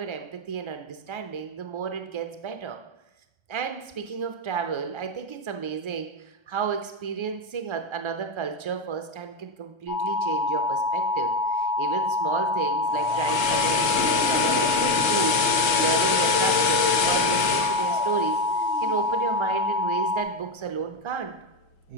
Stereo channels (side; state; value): left; late; 1.3 ms